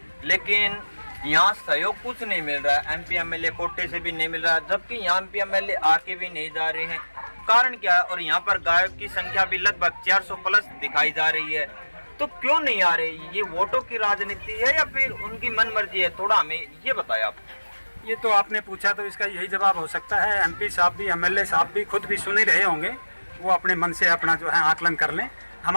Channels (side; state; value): both; inverted; correlation -1.00